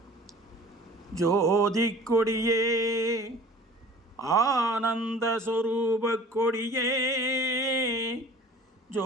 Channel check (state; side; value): normal; both; correlation 0.46